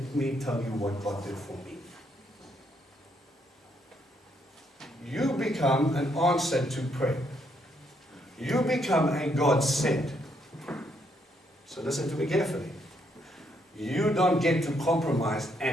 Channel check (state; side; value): normal; both; correlation 0.73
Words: me tell you what God did for me. You become an answer to prayer. You become a God sent. So listen to me carefully. You don't get to compromise